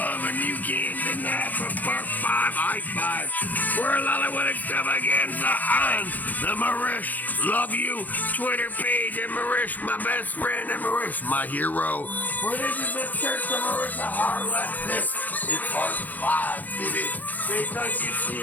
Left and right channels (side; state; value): right; late; 0.082 ms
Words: and you can't deny for part 5, high five. We're Lollywood Extravaganza on the Marish Love You Twitter page, and Marish, my best friend, and Marish, my hero. For this is the Church of Marissa Harlot. This is part 5, baby. Because you